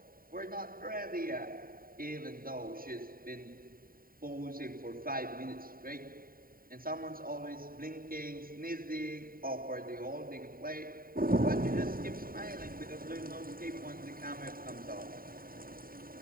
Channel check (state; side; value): late; left; 0.42 ms